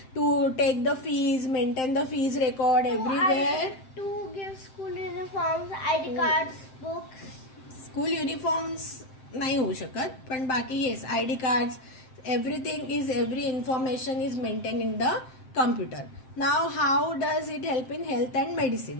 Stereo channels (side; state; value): right; late; 7.7 ms